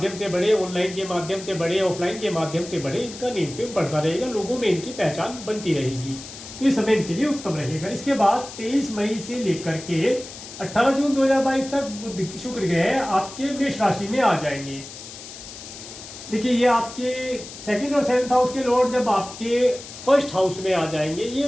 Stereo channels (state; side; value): noise; left; hiss, 13 dB below the sound